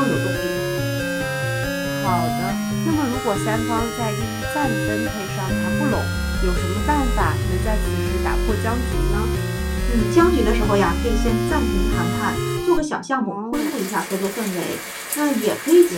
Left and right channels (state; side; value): identical; both; correlation 1.00